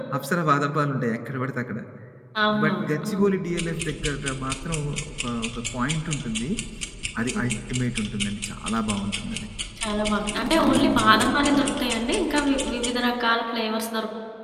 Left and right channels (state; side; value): identical; both; correlation 1.00